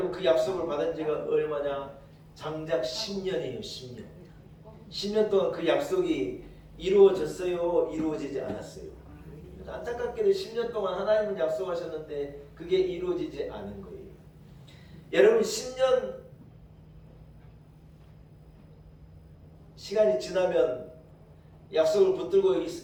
그 약속을 받은 지가 얼마냐? 장작 10년이에요. 10년. 10년 동안 그 약속이 이루어졌어요? 이루어지지 않았어요? 안타깝게도 10년 동안 하나님은 약속하셨는데 그게 이루어지지 않은 거예요. 여러분, 10년 시간이 지나면 약속을 붙들고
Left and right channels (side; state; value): both; identical; correlation 1.00